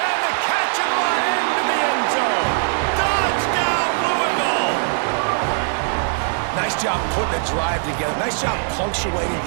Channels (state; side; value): silent; left; digital silence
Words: the catch and run into the end zone. Touchdown, Louisville! Nice job putting a drive together. Nice job punctuating